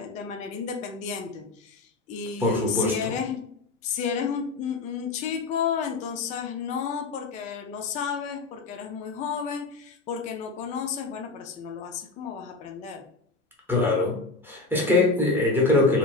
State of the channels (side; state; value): right; quieter; 3.6 dB